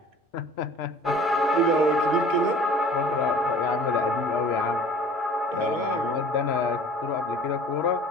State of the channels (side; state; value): both; normal; correlation 0.47